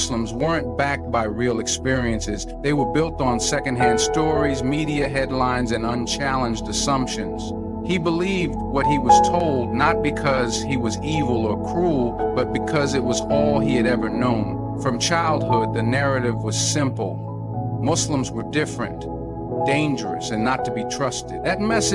weren't backed by real experiences. They were built on secondhand stories, media headlines, and unchallenged assumptions. He believed what he was told not because he was evil or cruel, but because it was all he had ever known. From childhood, the narrative was simple. Muslims were different, dangerous, and not to be trusted. That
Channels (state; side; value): identical; both; correlation 1.00